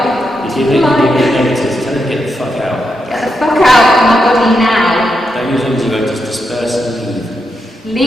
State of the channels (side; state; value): both; normal; correlation 0.84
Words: You're giving negatives. Tell them to get the fuck out. Get the fuck out of my body now. Don't use antidote, just disperse and leave.